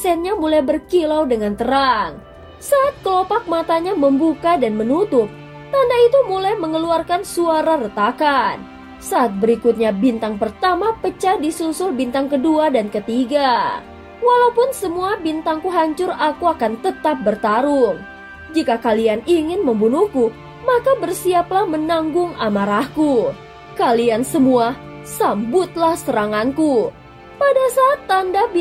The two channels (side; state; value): both; identical; correlation 1.00